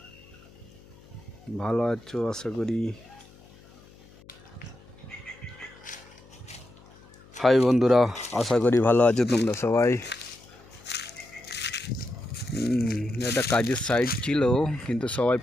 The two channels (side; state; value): left; noise; hum, 24 dB below the sound